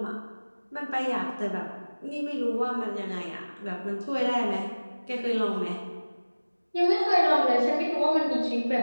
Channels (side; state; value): both; inverted; correlation -1.00